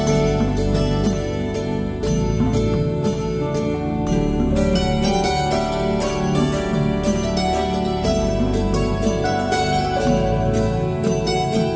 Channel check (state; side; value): identical; both; correlation 1.00